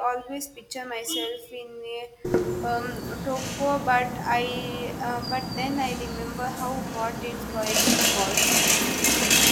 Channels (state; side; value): identical; both; correlation 1.00